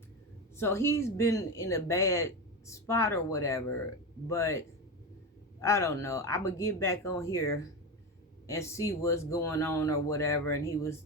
So he's been in a bad spot or whatever. But I don't know, I'm gonna get back on here and see what's going on or whatever. And he was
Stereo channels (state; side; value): normal; both; correlation 0.19